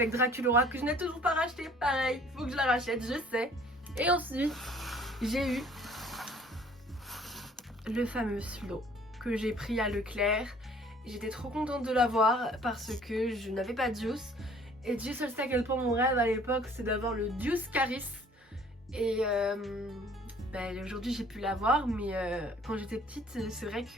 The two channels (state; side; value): normal; both; correlation 0.55